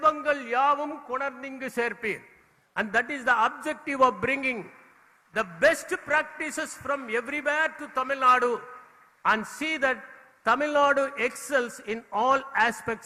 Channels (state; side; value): identical; both; correlation 1.00